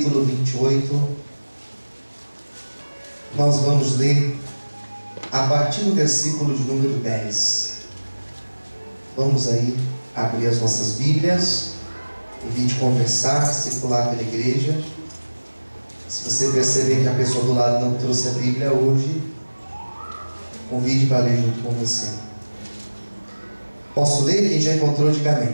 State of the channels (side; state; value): both; inverted; correlation -1.00